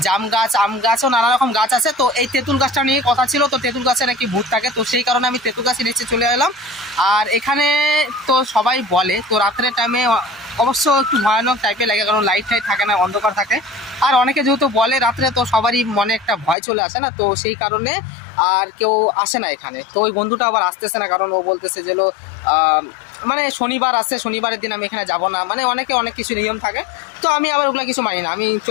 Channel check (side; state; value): right; drops out; at 16.6 s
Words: জাম গাছ, আম গাছও নানা রকম গাছ আছে। তো এই তেঁতুল গাছটা নিয়ে কথা ছিল, তো তেঁতুল গাছে নাকি ভূত থাকে, তো সেই কারণে আমি তেঁতুল গাছের নিচে চলে এলাম। আর এখানে তো সবাই বলে, তো রাত্রের টাইমে অবশ্য একটু ভয়ানক টাইপের লাগে, কারণ লাইট টাইট থাকে না, অন্ধকার থাকে। আর অনেকে যেহেতু বলে রাত্রে, তো সবারই মনে একটা ভয় চলে আসে না, তো সেই কারণে আর কেউ আসে না এখানে। তো ওই বন্ধুটা আবার আসতেছে না, কারণ ও বলতেছে যে মানে শনিবার আসছে, শনিবারের দিন আমি এখানে যাব না, মানে অনেকে অনেক কিছু নিয়ম থাকে। তো আমি আবার ওগুলা কিছু মানি না, আমি